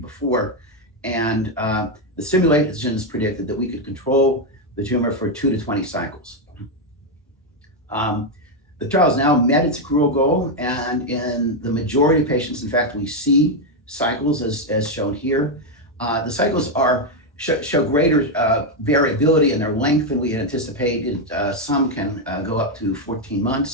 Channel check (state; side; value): normal; both; correlation 0.04